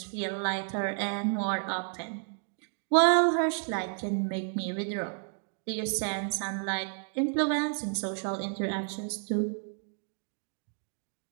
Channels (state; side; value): silent; left; 57 dB below the other